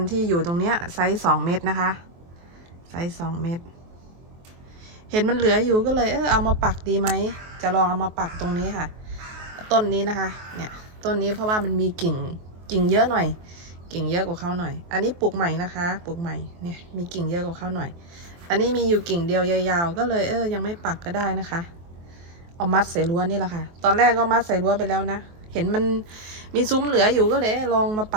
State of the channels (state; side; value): late; left; 23 ms